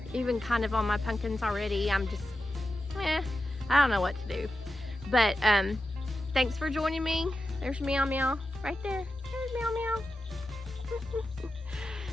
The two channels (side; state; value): both; normal; correlation 0.91